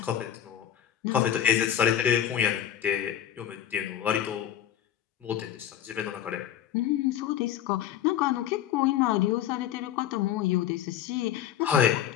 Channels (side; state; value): right; quieter; 10.6 dB